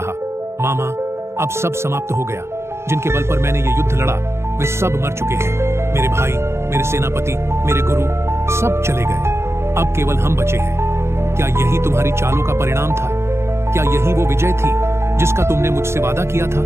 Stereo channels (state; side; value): late; left; 0.13 ms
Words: मामा, अब सब समाप्त हो गया। जिनके बल पर मैंने ये युद्ध लड़ा वे सब मर चुके हैं। मेरे भाई, मेरे सेनापति, मेरे गुरु सब चले गए। अब केवल हम बचे हैं। क्या यही तुम्हारी चालों का परिणाम था? क्या यही वो विजय थी जिसका तुमने मुझसे वादा किया